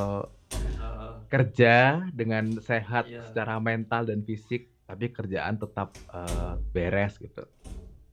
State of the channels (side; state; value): both; identical; correlation 1.00